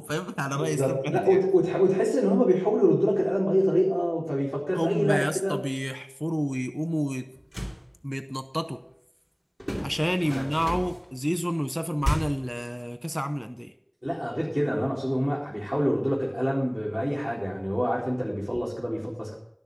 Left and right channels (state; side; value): identical; both; correlation 1.00